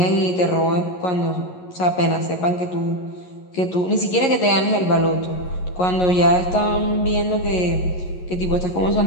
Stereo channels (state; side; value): late; right; 11 ms